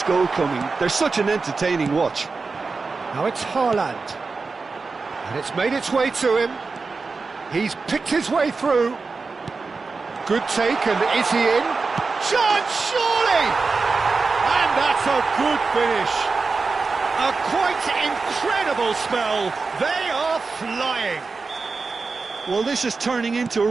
goal coming? They're such an entertaining watch. Now it's Haaland. And it's made its way to him. He's picked his way through. Good take, and is he in? Chance, surely! And that's a good finish. A quite incredible spell. They are flying. Well, this is turning into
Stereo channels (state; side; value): quieter; left; 4.3 dB